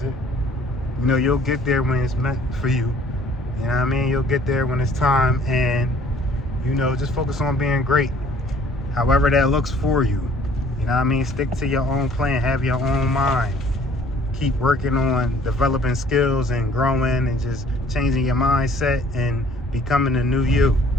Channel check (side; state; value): both; normal; correlation 0.56